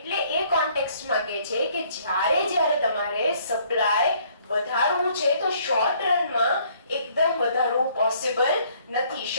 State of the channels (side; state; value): both; inverted; correlation -0.63